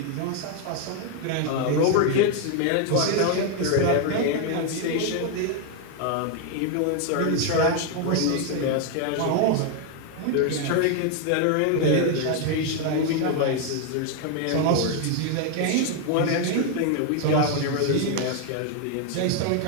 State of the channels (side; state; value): both; different; correlation 0.01